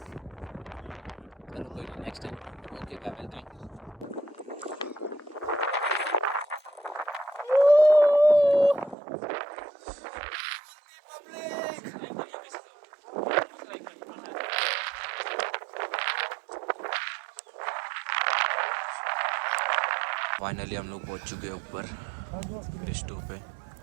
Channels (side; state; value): left; drops out; at 9.0 s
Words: चलो कोई नेक्स्ट टाइम। ओके क्या मिलता है। फाइनली हम लोग पहुंच चुके हैं ऊपर फेज 2 पे।